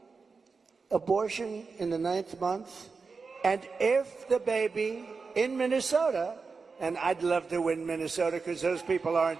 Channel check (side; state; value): left; quieter; 4.7 dB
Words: abortion in the 9th month. And if the baby in Minnesota, and I'd love to win Minnesota because those people